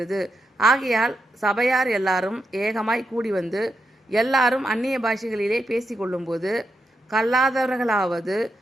ஆகையால் சபையார் எல்லாரும் ஏகமாய் கூடி வந்து எல்லாரும் அந்நிய பாஷைகளிலே பேசிக்கொள்ளும்போது கல்லாதவர்களாவது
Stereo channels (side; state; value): both; normal; correlation 0.84